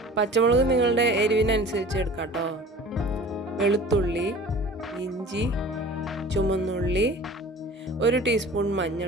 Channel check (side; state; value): both; normal; correlation 0.43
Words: നിങ്ങളുടെ എരിവിനനുസരിച്ച് എടുക്കാം കേട്ടോ. വെളുത്തുള്ളി, ഇഞ്ചി, ചുമന്നുള്ളി, 1 ടീസ്പൂൺ